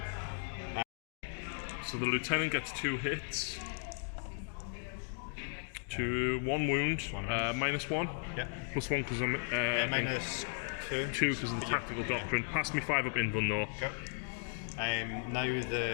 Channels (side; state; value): right; silent; 54 dB below the other